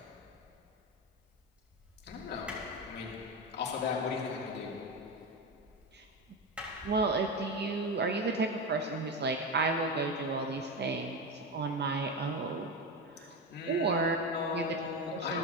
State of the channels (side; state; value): both; normal; correlation 0.18